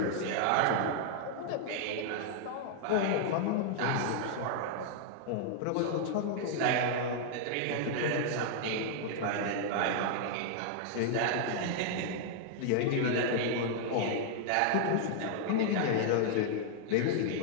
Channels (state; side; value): different; both; correlation 0.00